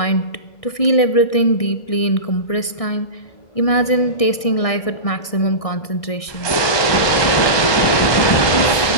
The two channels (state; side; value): late; right; 1.6 ms